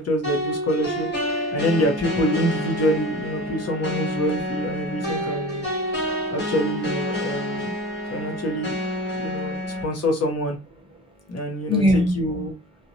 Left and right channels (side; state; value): both; normal; correlation 0.37